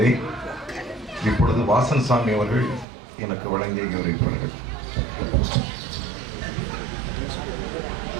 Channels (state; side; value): drops out; left; at 2.9 s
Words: இப்பொழுது வாசன் சாமி அவர்கள் எனக்கு வழங்கி கௌரவிப்பார்கள்.